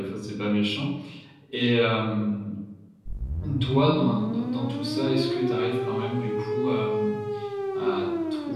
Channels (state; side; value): identical; both; correlation 1.00